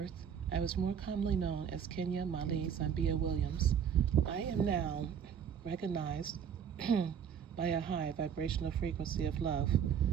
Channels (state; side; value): quieter; left; 8.0 dB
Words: I was more commonly known as Kenya Mali Zambia Williams. I am now recognized by a high vibrational frequency of love.